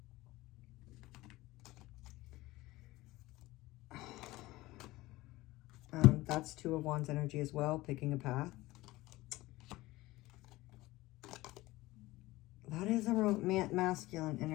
That's Two of Wands energy as well, picking a path. That is a masculine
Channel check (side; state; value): right; quieter; 18.9 dB